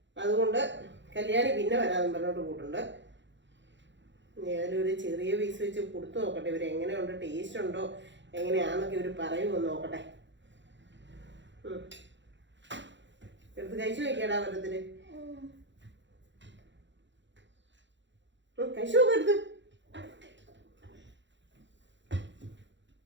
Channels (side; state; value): left; late; 0.53 ms